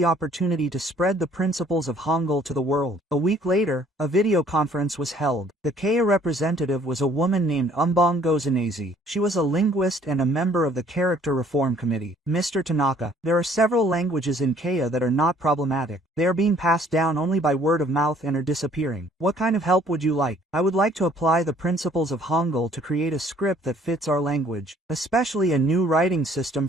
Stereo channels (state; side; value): normal; both; correlation 0.59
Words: opportunity to spread the principles of Hangul to the world. A week later, a video conference was held. The Keiya representative was a woman named Umbong Gozanese. She was a linguist and a member of the Character Reform Committee. Mr. Tanaka, there are several languages in Keiya that are not problematic. They are being passed down only by word of mouth and are disappearing. What kind of help would you like? I would like to apply the principles of Hangul to create a script that fits our language, especially a new writing system